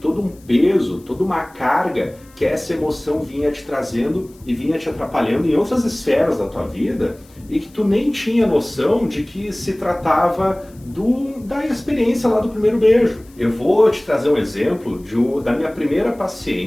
todo um peso, toda uma carga que essa emoção vinha te trazendo e vinha te atrapalhando em outras esferas da tua vida e que tu nem tinha noção de que se tratava da experiência lá do primeiro beijo. Eu vou te trazer um exemplo da minha primeira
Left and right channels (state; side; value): noise; left; hiss, 28 dB below the sound